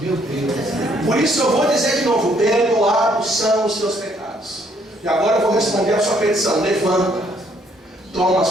Deus. Por isso eu vou dizer de novo, perdoados são os seus pecados. E agora eu vou responder a sua petição. Levanta, toma a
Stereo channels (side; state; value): both; normal; correlation 0.67